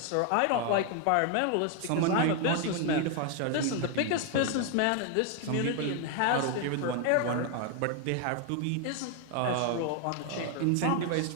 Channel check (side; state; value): both; different; correlation 0.01